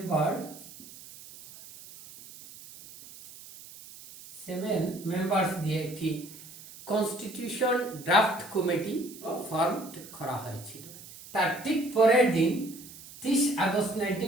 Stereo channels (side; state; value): right; noise; hiss, 17 dB below the sound